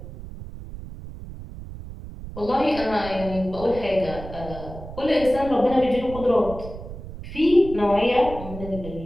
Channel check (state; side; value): noise; right; rumble, 12 dB below the sound